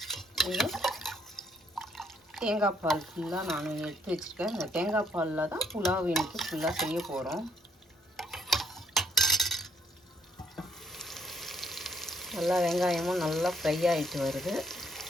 தேங்காய் பால் ஃபுல்லாக நான் எடுத்து வச்சுருக்கேன். இந்த தேங்காய் பாலில் தான் புலாவ் எனக்கு ஃபுல்லாக செய்ய போகிறோம். நல்லா வெங்காயமும் நல்லா ஃப்ரை ஆகிட்டு வருது.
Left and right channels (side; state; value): both; normal; correlation 0.69